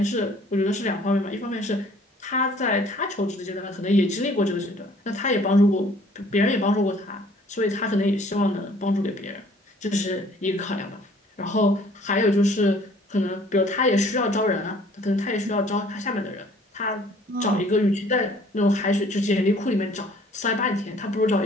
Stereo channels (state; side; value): normal; both; correlation 0.56